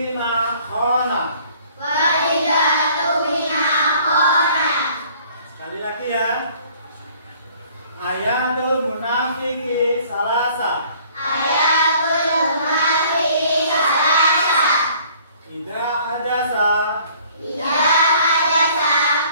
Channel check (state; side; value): inverted; both; correlation -0.56